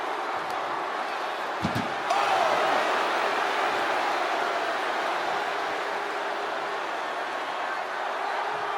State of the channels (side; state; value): both; identical; correlation 1.00